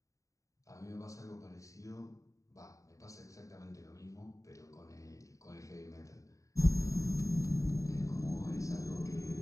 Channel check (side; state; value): right; late; 0.16 ms